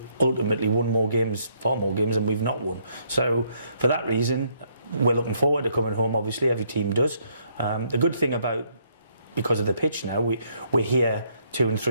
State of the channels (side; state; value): both; inverted; correlation -0.70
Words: ultimately won more games, far more games than we've not won. So for that reason, we're looking forward to coming home. Obviously, every team does. The good thing about, because of the pitch now, we're here 2 and